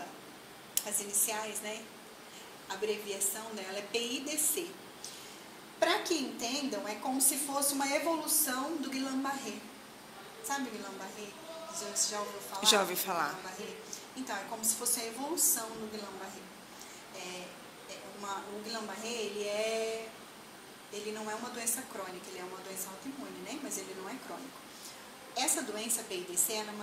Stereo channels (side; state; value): both; identical; correlation 1.00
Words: As iniciais, né? A abreviação dela é PIDC. Para que entendam, é como se fosse uma evolução do Guillain-Barré. Sabe o Guillain-Barré? Você já ouviu falar? Já ouvi falar. Guillain-Barré? Então, é como se fosse a evolução do Guillain-Barré. O Guillain-Barré, ele não é uma doença crônica, ele é uma doença autoimune, né? Mas ele não é crônico. Essa doença PIDC, ela é